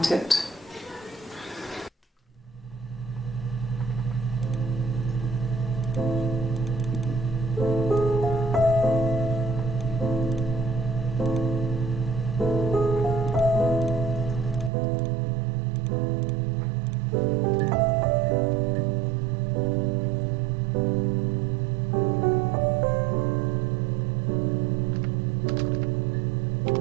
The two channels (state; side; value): drops out; left; at 14.7 s